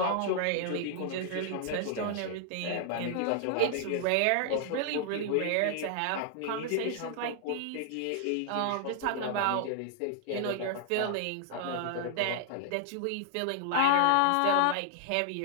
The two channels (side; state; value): both; different; correlation 0.00